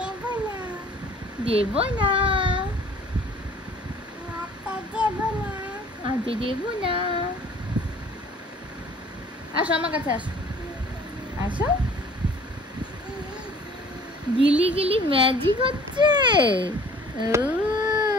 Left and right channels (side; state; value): both; normal; correlation 0.52